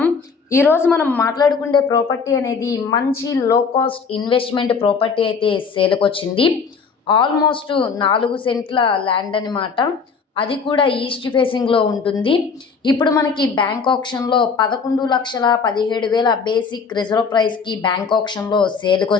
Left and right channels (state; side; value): quieter; right; 5.4 dB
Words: ఈరోజు మనం మాట్లాడుకునే ప్రాపర్టీ అనేది మంచి లో కాస్ట్ ఇన్వెస్ట్మెంట్ ప్రాపర్టీ అయితే సేల్కి వచ్చింది. ఆల్మోస్ట్ 4 సెంట్ల ల్యాండ్ అనమాట. అది కూడా ఈస్ట్ ఫేసింగ్లో ఉంటుంది. ఇప్పుడు మనకి బ్యాంక్ ఆప్షన్లో 11,17,000 బేసిక్ రిజర్వ్ ప్రైస్కి బ్యాంక్ ఆప్షన్లో సేల్కి